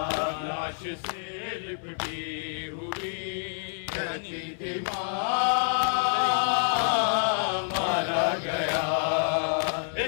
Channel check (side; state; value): right; silent; 59 dB below the other